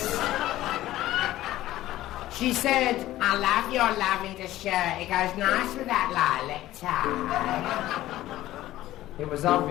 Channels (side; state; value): right; quieter; 15.1 dB